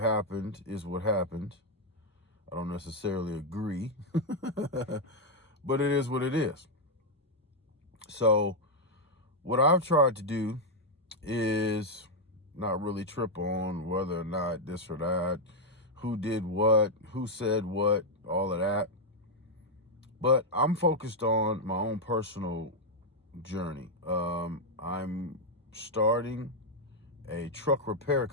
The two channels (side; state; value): both; normal; correlation -0.01